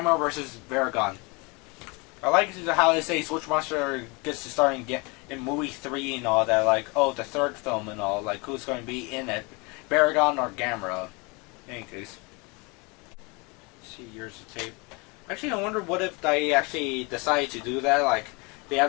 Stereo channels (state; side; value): quieter; right; 28.5 dB